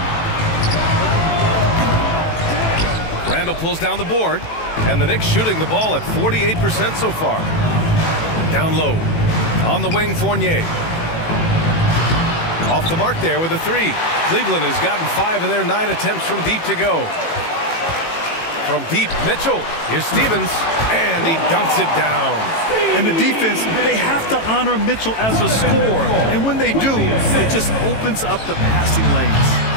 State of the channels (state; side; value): late; right; 18 ms